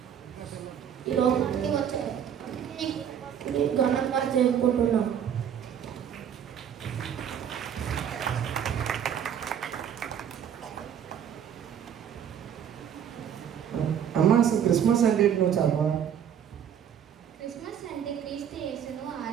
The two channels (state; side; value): quieter; left; 8.9 dB